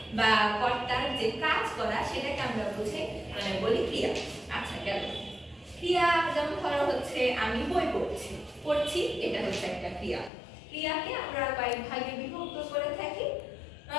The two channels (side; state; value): right; drops out; at 10.3 s